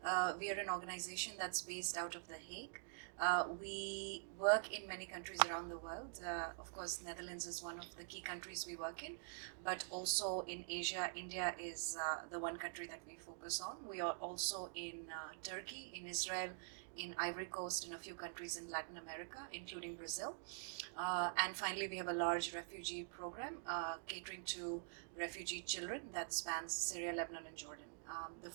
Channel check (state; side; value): silent; left; digital silence